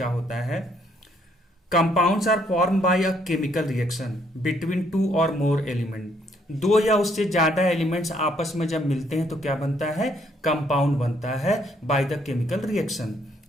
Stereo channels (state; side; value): normal; both; correlation 0.69